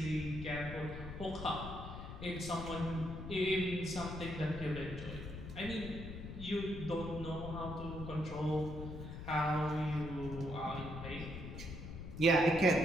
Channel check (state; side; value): noise; left; rumble, 9 dB below the sound